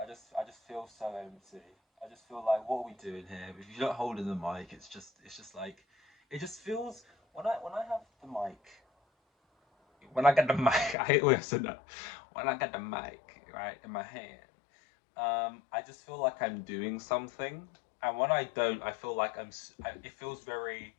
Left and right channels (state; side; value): drops out; right; at 11.0 s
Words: I just feel so empty. I just feel like, what are we doing here? If you don't hold in the mic, it's just like, it just feels when I have the mic, when I get the mic, I hate the way I said that. When I get the mic right in my hand, I just feel like I'm doing something, and when I don't, I feel like it feels very.